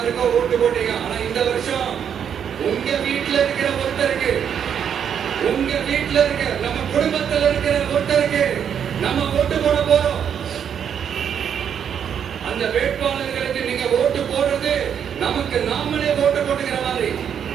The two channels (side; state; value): left; quieter; 8.2 dB